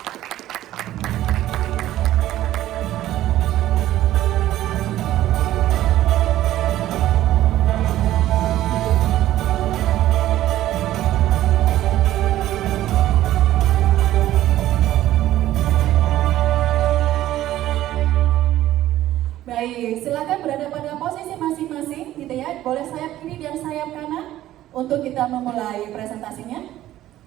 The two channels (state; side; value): quieter; left; 13.9 dB